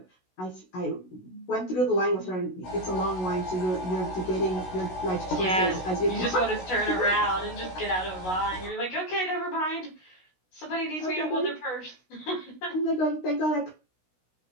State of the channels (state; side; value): late; right; 16 ms